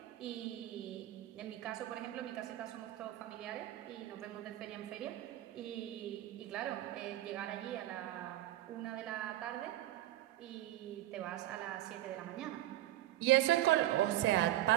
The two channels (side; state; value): left; quieter; 14.7 dB